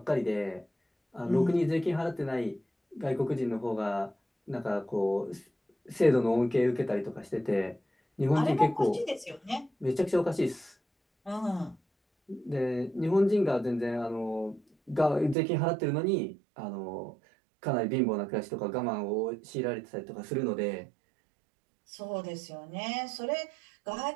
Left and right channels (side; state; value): left; drops out; at 15.4 s